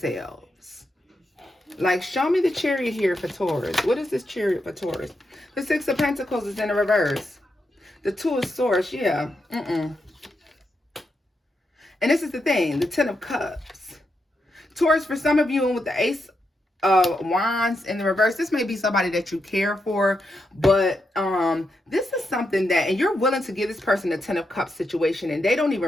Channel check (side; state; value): both; normal; correlation 0.84